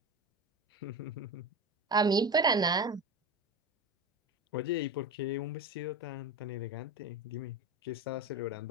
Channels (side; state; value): both; normal; correlation 0.24